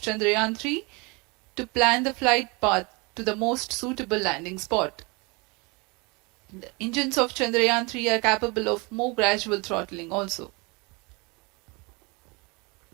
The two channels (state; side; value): quieter; left; 28.3 dB